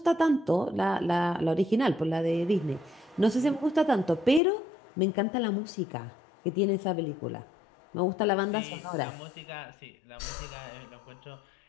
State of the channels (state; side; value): drops out; right; at 4.4 s